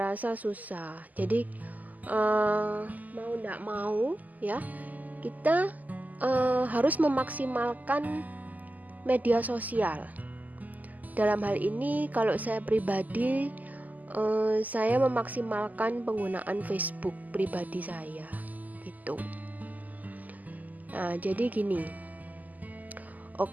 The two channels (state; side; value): late; left; 0.080 ms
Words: rasa susah. Jadi mau tidak mau ya, kita harus memaksimalkan media sosial. Dalam hal ini kalau saya pribadi, saya memaksimalkan penggunaan Facebook pribadi saya gitu. Nah jadi gini,